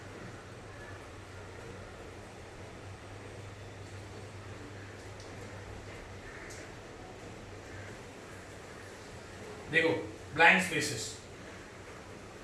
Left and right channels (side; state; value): both; identical; correlation 1.00